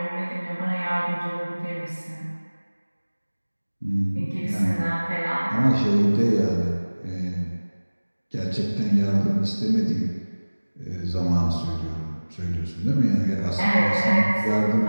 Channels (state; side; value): inverted; both; correlation -1.00